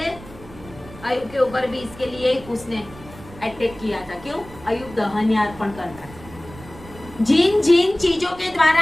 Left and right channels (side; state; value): right; noise; rumble, 18 dB below the sound